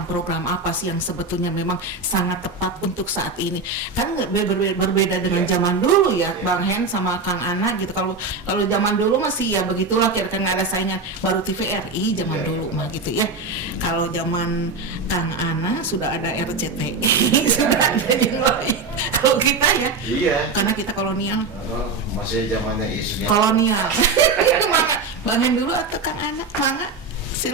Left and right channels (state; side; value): quieter; left; 4.1 dB